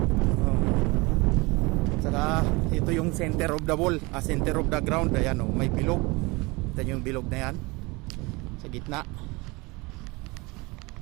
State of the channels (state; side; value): quieter; left; 25.1 dB